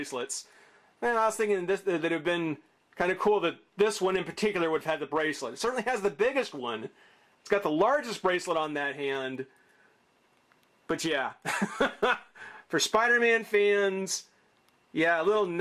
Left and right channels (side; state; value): both; identical; correlation 1.00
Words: And I was thinking that it would have been kind of cool that this one in particular would have had the bracelet. It certainly has the biggest one. It's got the largest bracelet on that hand. But yeah, for Spider-Man fans, yeah, a little